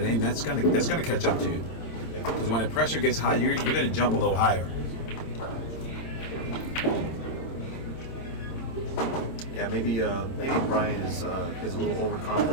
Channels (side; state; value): right; late; 26 ms